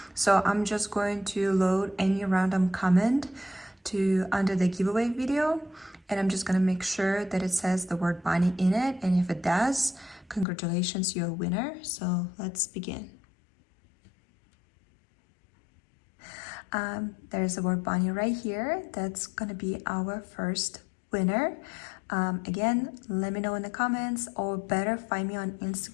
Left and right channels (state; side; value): drops out; right; at 10.5 s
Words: So I'm just going to load any random comment to under the giveaway video, and I'm just gonna make sure that it says the word bunny in it, and if it does, congratulations, you're a winner. So let's begin. There's the word bunny right here. That's gonna be our first winner. Again, let me know in the comments, or better find me on